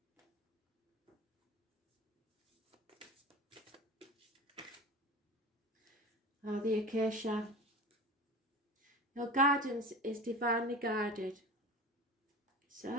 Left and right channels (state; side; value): normal; both; correlation 0.34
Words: Oh, the acacia. Your guidance is divinely guided.